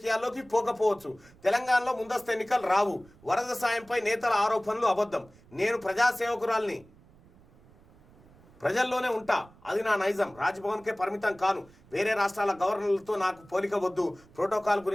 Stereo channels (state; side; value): noise; right; rumble, 26 dB below the sound